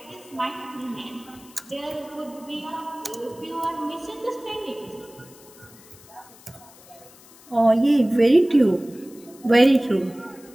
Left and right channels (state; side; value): noise; left; hiss, 23 dB below the sound